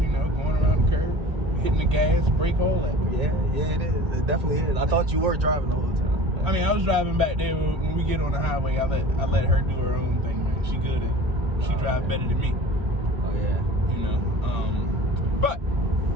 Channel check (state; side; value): late; left; 2.0 ms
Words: know, going around the curve, hitting the gas, brake, all that. Yeah, it is. It definitely is. I thought you were driving the whole time. But I mean, I was driving back there. When we get on the highway, I let her do her own thing, man. She good at it. She drives better than me. Oh, yeah. You know, but